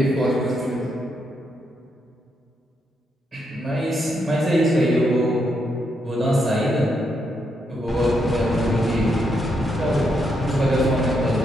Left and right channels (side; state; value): both; normal; correlation 0.79